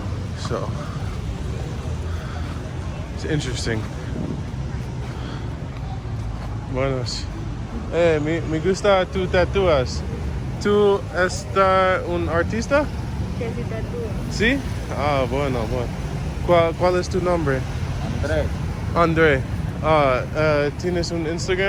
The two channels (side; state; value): both; identical; correlation 1.00